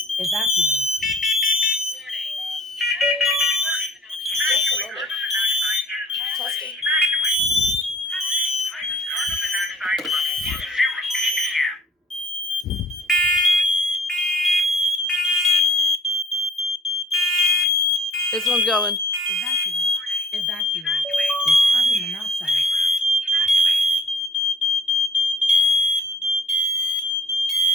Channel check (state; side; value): normal; both; correlation 0.54